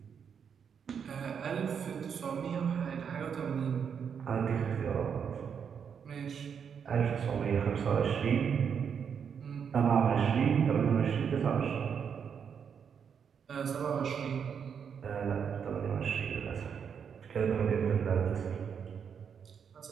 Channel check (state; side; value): quieter; left; 7.2 dB